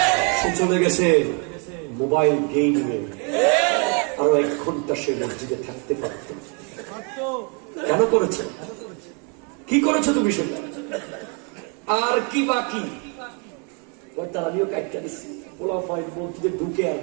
সে চলে গেছে মোবাইল গেমিংয়ে। আরো 1 ঘন্টা সে মসজিদে থাকতে পারত। কেন করেছে? কি করেছো তুমি সেটা? আর কি বাকি? আমিও কাটটা দিচ্ছি, পোলা ফাইন মসজিদে ঢুকে আর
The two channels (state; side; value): quieter; left; 36.6 dB